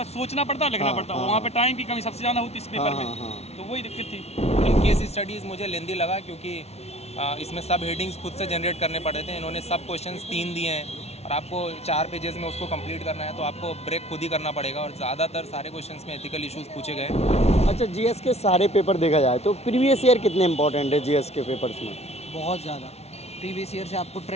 सोचना पड़ता है, लिखना हाँ, पड़ता है, हाँ, वहाँ पे टाइम की कमी सबसे ज़्यादा होती है इस पेपर हाँ, में, हाँ। तो वही दिक्कत थी। केस स्टडीज़ मुझे लेंदी लगा क्योंकि इसमें सब हेडिंग्स खुद से जनरेट करने पड़े थे। इन्होंने सब क्वेश्चंस 3 दिए हैं और आपको 4 पेजेस में उसको कंप्लीट करना है, तो आपको ब्रेक खुद ही करना पड़ेगा और ज़्यादातर सारे क्वेश्चंस में एथिकल इश्यूज पूछे गए। अच्छा, जीएस के सारे पेपर देखा जाए तो प्रीवियस ईयर कितने इंपॉर्टेंट है जीएस के पेपर्स में? बहुत ज़्यादा। प्रीवियस ईयर से आपको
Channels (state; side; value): late; right; 0.31 ms